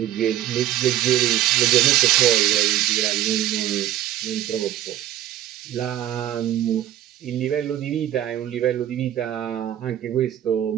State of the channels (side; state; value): left; quieter; 12.4 dB